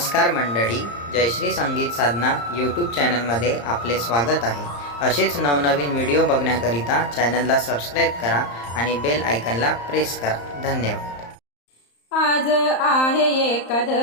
मंडळी, जयश्री संगीत साधना यूट्यूब चॅनलमध्ये आपले स्वागत आहे। असेच नवनवीन व्हिडिओ बघण्याकरिता चॅनलला सबस्क्राईब करा आणि बेल आयकॉनला प्रेस करा। धन्यवाद। आज आहे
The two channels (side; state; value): right; late; 35 ms